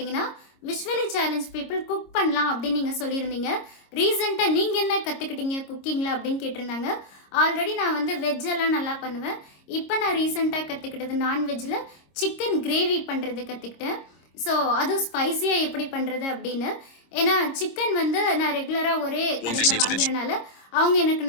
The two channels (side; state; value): right; late; 26 ms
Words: விஷுவலி சேலஞ்ச் பீப்புள் குக் பண்ணலாம் அப்படின்னு நீங்கள் சொல்லியிருந்தீங்க. ரீசெண்டாக நீங்கள் என்ன கற்றுக்கிட்டீங்க குக்கிங்கில் அப்படின்னு கேட்டிருந்தாங்க. ஆல்ரெடி நான் வந்து வெஜ்ஜெல்லாம் நல்லா பண்ணுவேன். இப்போ நான் ரீசெண்டாக கற்றுக்கிட்டது நான்வெஜ்ஜில் சிக்கன் கிரேவி பண்ணுறது கற்றுக்கிட்டேன். ஸோ அதுவும் ஸ்பைஸியாக எப்படி பண்ணுறது அப்படின்னு. ஏன்னா சிக்கன் வந்து நான் ரெகுலராக ஒரே கடையில் வாங்குறதுனால அவங்க எனக்கு